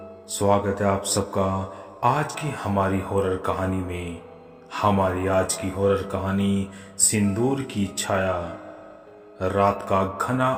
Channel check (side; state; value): both; identical; correlation 1.00